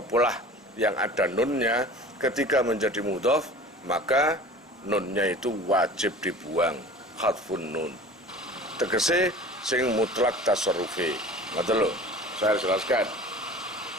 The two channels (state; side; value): normal; both; correlation 0.41